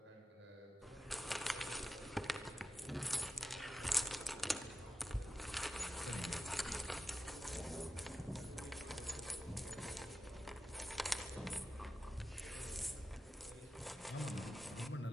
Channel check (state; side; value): normal; both; correlation 0.92